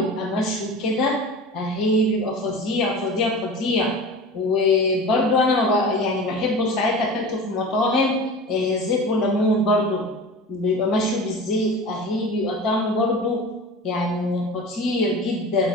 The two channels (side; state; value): both; normal; correlation 0.34